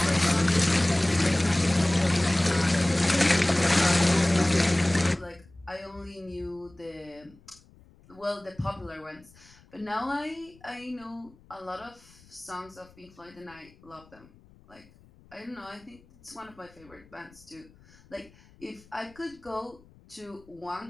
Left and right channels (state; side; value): noise; left; rumble, 26 dB below the sound